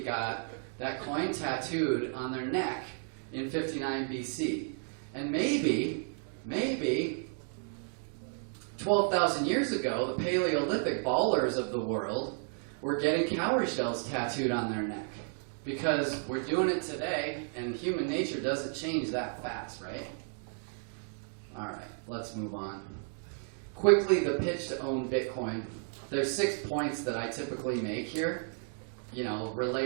that coin tattooed on their neck in 59 BC. And maybe 12,000 years ago, the Paleolithic ballers of the world were getting cowrie shells tattooed on their neck. Because we're doing it today, and human nature doesn't change that fast, right? All right, let's move on. Quickly, the pitch to own Bitcoin. There's 6 points that I typically make here,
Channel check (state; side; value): silent; left; 56 dB below the other